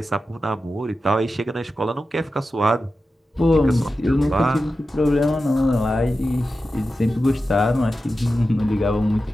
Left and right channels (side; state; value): both; normal; correlation 0.92